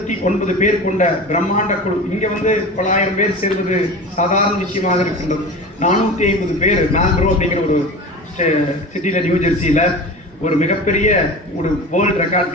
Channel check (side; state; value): both; normal; correlation 0.32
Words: பேர் கொண்ட பிரம்மாண்ட குழு, இங்க 900 பேர் சேர்வது சாதாரண விஷயமாக இருக்கின்றது. 450 பேர் மேல்ப்ரோ அப்படிங்கிற ஒரு சிட்டியில நியூ ஜெர்சியில ஒரு மிகப்பெரிய ஒரு வேர்ல்ட் ரெக்கார்ட்,